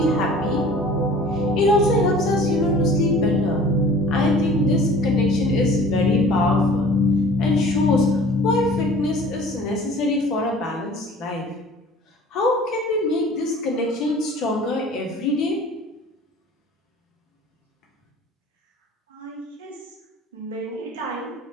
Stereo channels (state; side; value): normal; both; correlation 0.47